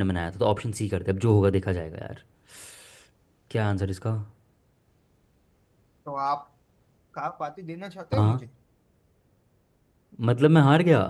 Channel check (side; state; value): both; identical; correlation 1.00